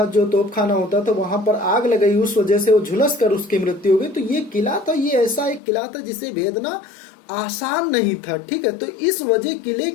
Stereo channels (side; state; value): right; drops out; at 5.6 s